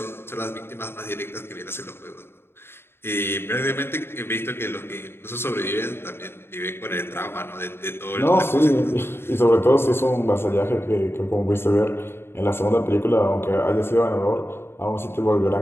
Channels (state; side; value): late; right; 0.11 ms